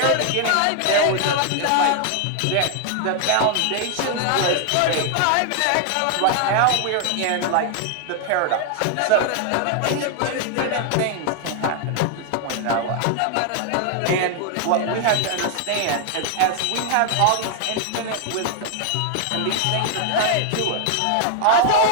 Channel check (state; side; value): different; both; correlation 0.00